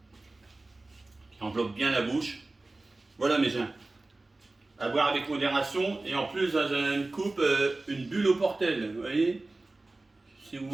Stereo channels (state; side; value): quieter; left; 3.1 dB